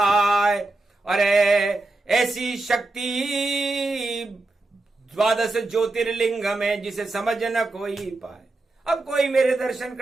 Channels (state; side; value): quieter; left; 3.0 dB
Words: अरे ऐसी शक्ति 12 ज्योतिर्लिंग में जिसे समझ न कोई पाए। अब कोई मेरे दर्शन